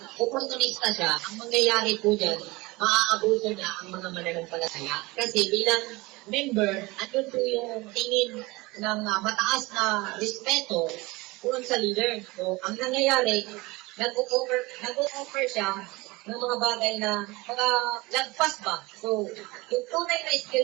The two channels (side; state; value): left; quieter; 22.7 dB